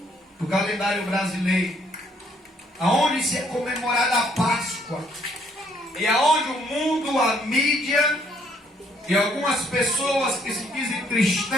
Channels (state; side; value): normal; both; correlation 0.67